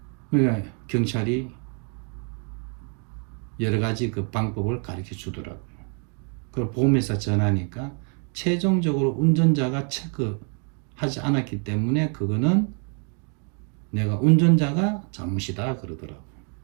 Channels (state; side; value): quieter; left; 39.9 dB